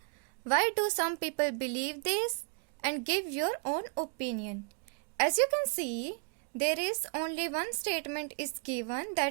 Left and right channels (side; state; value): left; quieter; 39.3 dB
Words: Why do some people believe this? And give your own opinion. As you can see, there is only one statement is given